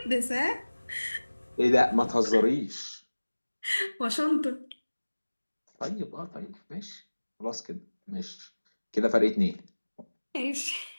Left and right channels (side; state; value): both; inverted; correlation -1.00